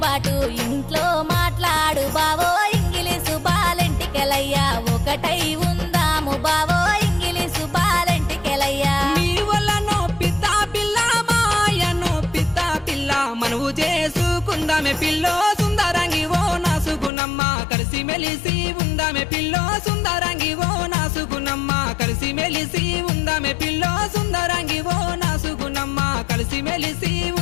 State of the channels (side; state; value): right; drops out; at 17.1 s